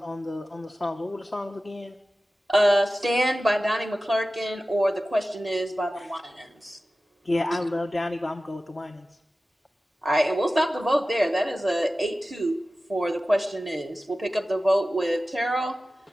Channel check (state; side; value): normal; both; correlation 0.95